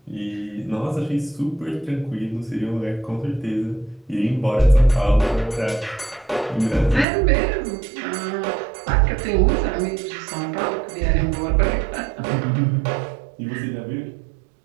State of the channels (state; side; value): drops out; left; at 7.1 s